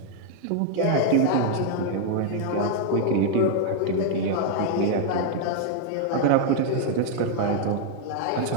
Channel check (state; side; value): different; both; correlation 0.00